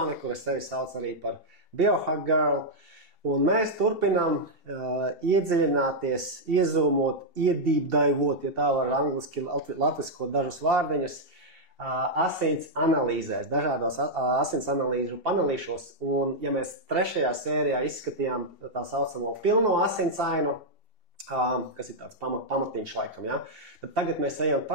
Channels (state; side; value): late; left; 2.7 ms